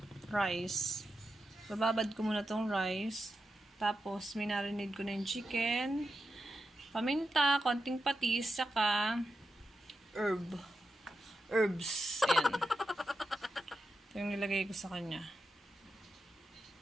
rice. Bababad ko muna tong rice. Tapos, minarinade ko na yung chicken, paminta, konting patis, saka herbs. Ayan. Ito yung nilagay ko sa kanya.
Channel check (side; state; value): both; normal; correlation 0.89